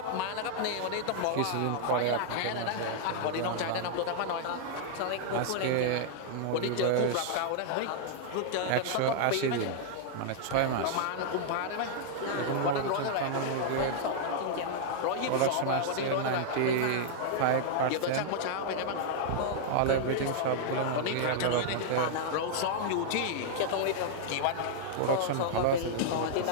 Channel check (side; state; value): both; different; correlation -0.01